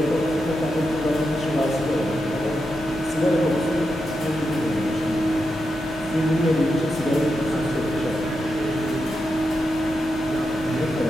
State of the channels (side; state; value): both; normal; correlation 0.87